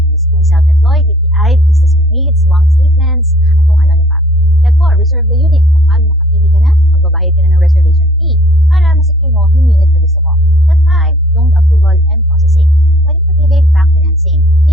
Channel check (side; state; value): both; normal; correlation 0.56